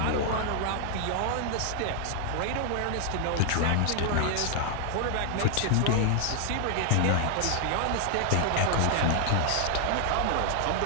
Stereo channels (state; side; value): different; both; correlation 0.00